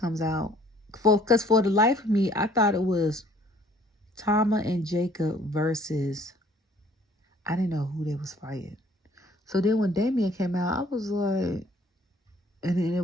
comes out. Because for the life of me, I thought it was Tama and Jacob versus, I didn't know who they was fighting. So then when Damien came out, I was like, and then it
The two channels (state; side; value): normal; both; correlation 0.58